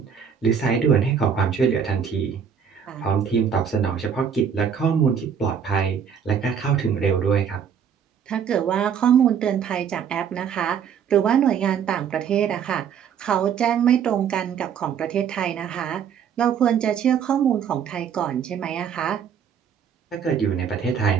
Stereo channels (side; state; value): left; quieter; 7.6 dB